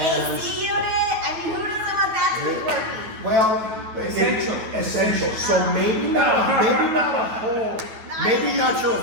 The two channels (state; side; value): late; left; 9.1 ms